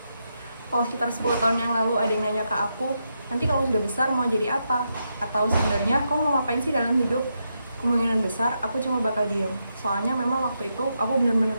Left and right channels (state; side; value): inverted; both; correlation -0.83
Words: Kalau sekitar 10 tahun yang lalu ada yang nanya ke aku, nanti kalau sudah besar mau jadi apa? Atau sebenarnya kamu mau ngapain sih dalam hidup? Kemungkinan besar aku cuma bakal diem. Soalnya memang waktu itu aku benar-benar